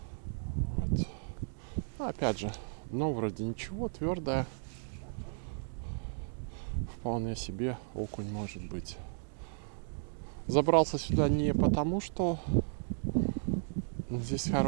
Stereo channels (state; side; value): silent; left; digital silence